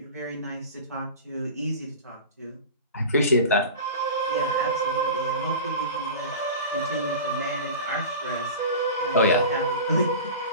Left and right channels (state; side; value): inverted; both; correlation -0.33